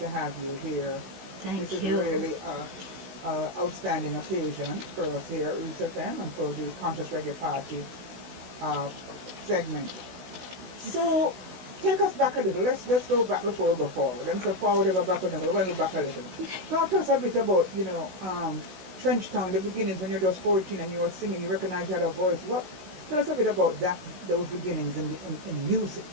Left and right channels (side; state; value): left; late; 16 ms